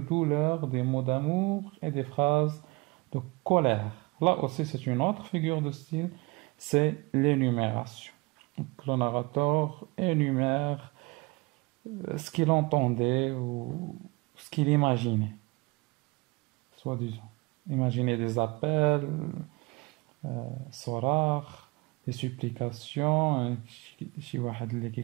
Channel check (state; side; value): quieter; left; 25.6 dB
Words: des mots d'amour et des phrases de colère. Là aussi, c'est une autre figure de style, c'est l'énumération. Donc, le narrateur énumère ce qu'il entendait ou ce qu'il imaginait, soi-disant. Imaginer des appels, صراخ, des supplications, شي واحد اللي